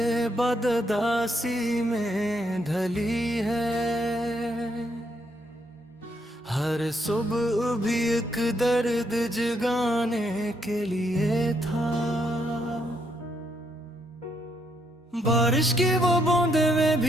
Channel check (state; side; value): normal; both; correlation 0.74